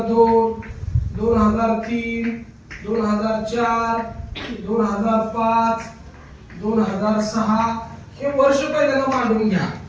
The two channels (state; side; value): identical; both; correlation 1.00